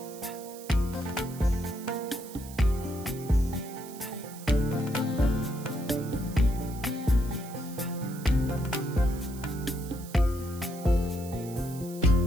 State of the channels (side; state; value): right; noise; hiss, 17 dB below the sound